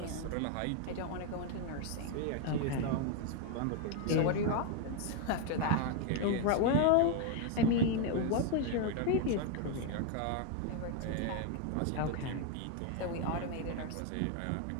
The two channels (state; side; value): different; both; correlation 0.01